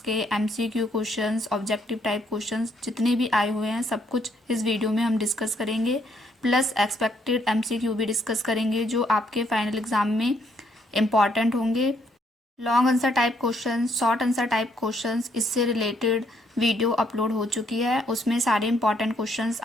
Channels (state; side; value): normal; both; correlation 0.71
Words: के MCQ questions, objective type questions जितने भी आए हुए हैं सब कुछ इस वीडियो में हम डिस्कस करेंगे। प्लस एक्सपेक्टेड MCQ भी डिस्कस करेंगे जो आपके फाइनल एग्ज़ाम में इम्पॉर्टेंट होंगे। Long answer type questions, short answer type questions, इससे रिलेटेड वीडियो अपलोड हो चुकी है। उसमें सारे इंपॉर्टेंट क्वेश्चंस